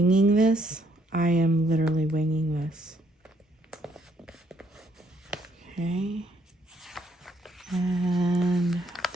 this? I am literally winging this. Okay. And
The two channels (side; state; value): both; normal; correlation 0.70